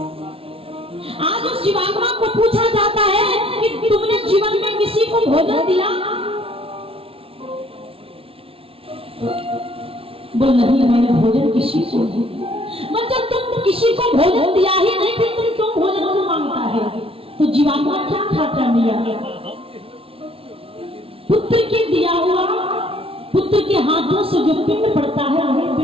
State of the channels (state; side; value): late; left; 0.27 ms